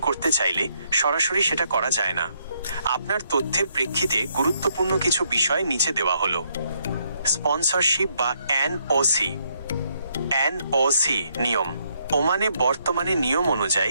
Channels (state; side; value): inverted; both; correlation -0.73